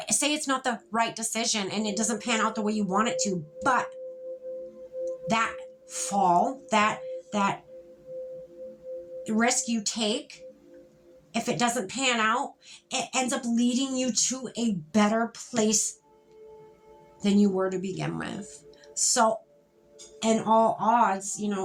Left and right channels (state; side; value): identical; both; correlation 1.00